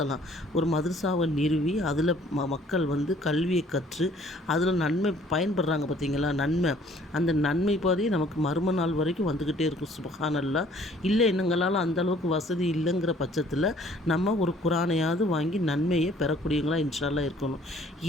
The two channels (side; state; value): both; normal; correlation 0.57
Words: ஒரு மதரசாவை நிறுவி அதில் மக்கள் கல்வியை கற்று அதில் நன்மை பயன்படுறாங்க பார்த்தீங்களா, நன்மை. அந்த நன்மை பாதி நமக்கு மறும நாள் வரைக்கும் வந்துக்கிட்டே இருக்கும். சுப்ஹானல்லாஹ். இல்லை எங்களால் அந்தளவுக்கு வசதி இல்லைங்கிற பட்சத்தில் நம்ம ஒரு குரானையாவது வாங்கி நன்மையை பெறக்கூடியவங்களாக இன்ஷால்லா இருக்கணும்.